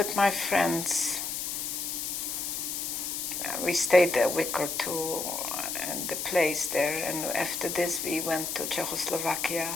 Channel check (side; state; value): left; noise; hiss, 3 dB below the sound